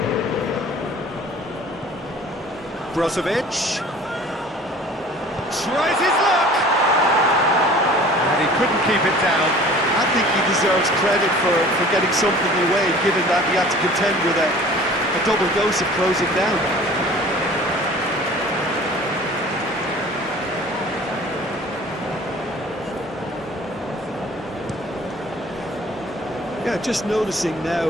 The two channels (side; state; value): both; normal; correlation 0.47